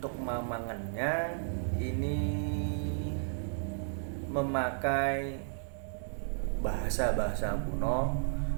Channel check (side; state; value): left; silent; 55 dB below the other